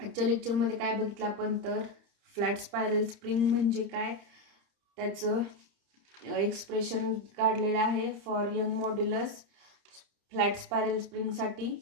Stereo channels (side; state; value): left; late; 30 ms